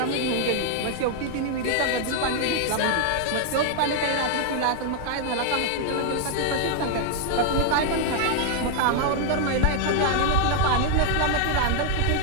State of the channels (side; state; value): both; different; correlation 0.00